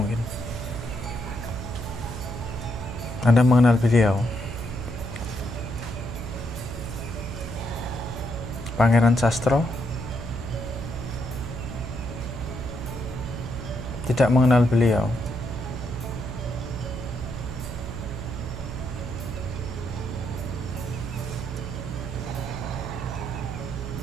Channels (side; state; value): right; noise; hum, 7 dB below the sound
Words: Anda mengenal beliau? Pangeran Sastro? Tidak mengenal beliau.